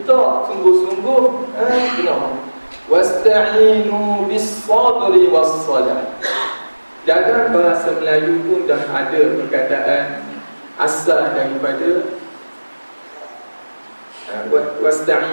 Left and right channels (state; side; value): inverted; both; correlation -1.00